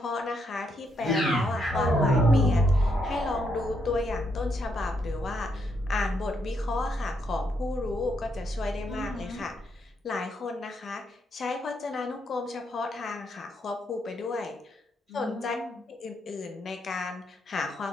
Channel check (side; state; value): both; normal; correlation 0.77